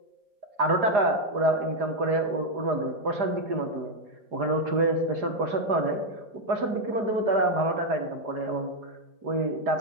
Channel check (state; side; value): late; left; 4.9 ms